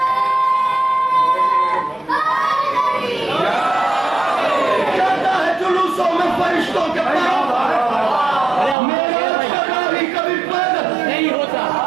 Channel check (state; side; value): drops out; left; at 8.8 s